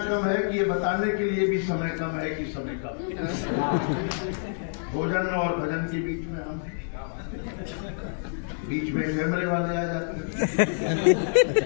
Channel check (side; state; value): right; silent; digital silence